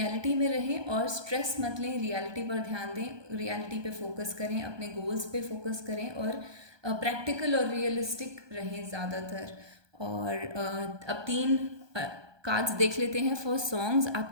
में रहें और स्ट्रेस मत लें, रियलिटी पर ध्यान दें, रियलिटी पे फोकस करें, अपने गोल्स पे फोकस करें और प्रैक्टिकल और रियलिस्टिक रहें ज़्यादातर। और अब 3 कार्ड्स देख लेते हैं फॉर सॉन्ग्स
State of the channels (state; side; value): late; left; 1.2 ms